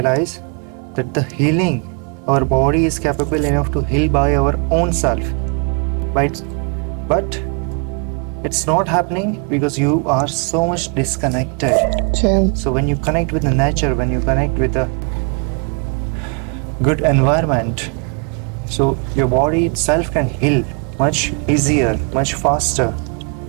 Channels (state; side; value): quieter; left; 38.0 dB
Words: that the healing, our body is capable enough to heal by our own self. But it's not happening because you are so much disconnected. True. So when you connect with the nature, when you connect with a good environment, so your body itself can heal much easier, much faster.